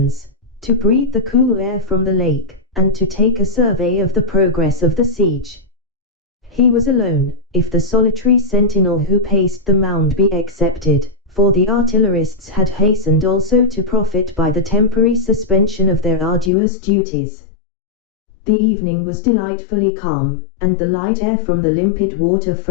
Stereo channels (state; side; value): drops out; right; at 16.5 s